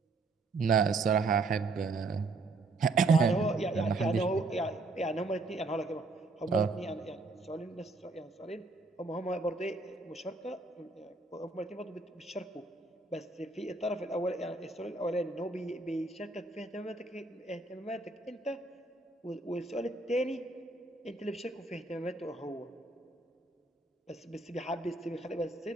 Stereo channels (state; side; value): quieter; left; 3.5 dB